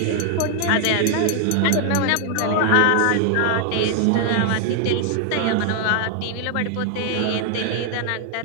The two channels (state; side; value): different; both; correlation 0.00